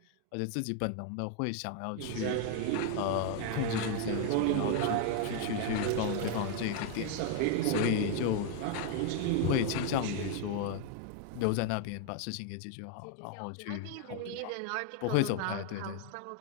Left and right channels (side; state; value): both; different; correlation 0.00